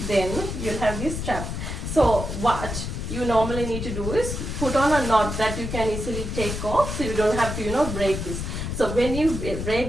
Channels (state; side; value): noise; left; rumble, 4 dB below the sound